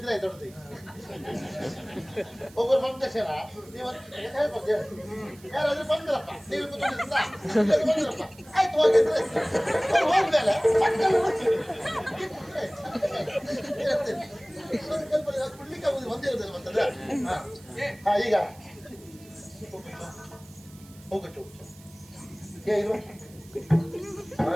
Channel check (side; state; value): right; noise; hiss, 24 dB below the sound